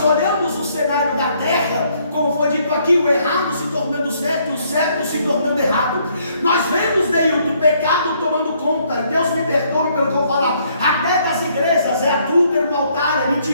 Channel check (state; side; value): inverted; both; correlation -0.68